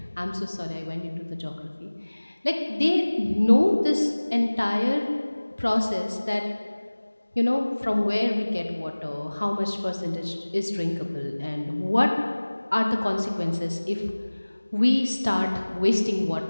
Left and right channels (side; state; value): both; inverted; correlation -1.00